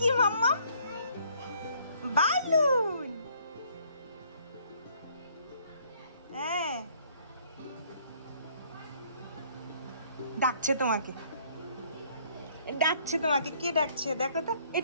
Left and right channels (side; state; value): both; inverted; correlation -0.62